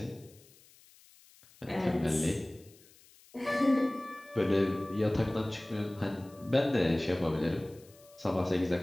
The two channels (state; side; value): noise; left; hiss, 26 dB below the sound